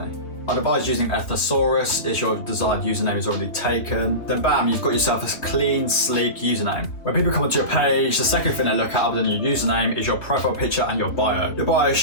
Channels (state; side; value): late; right; 3.1 ms